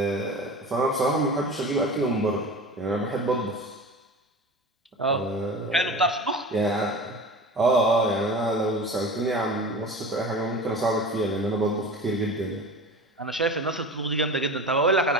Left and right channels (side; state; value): both; normal; correlation 0.33